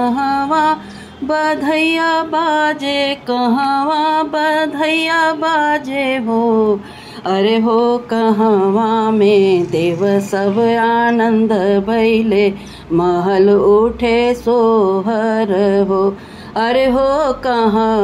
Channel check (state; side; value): identical; both; correlation 1.00